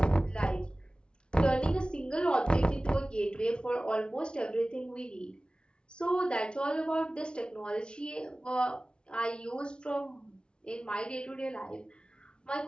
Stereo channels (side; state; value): right; late; 0.055 ms